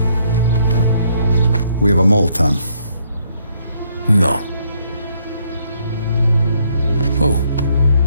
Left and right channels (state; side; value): inverted; both; correlation -0.70